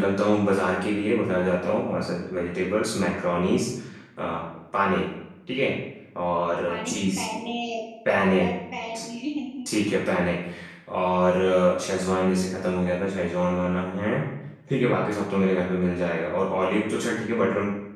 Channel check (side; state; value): both; identical; correlation 1.00